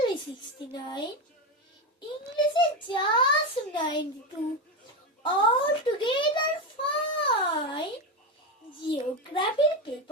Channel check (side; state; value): both; normal; correlation 0.14